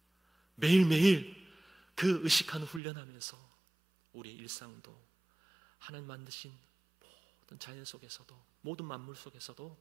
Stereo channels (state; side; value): drops out; left; at 2.8 s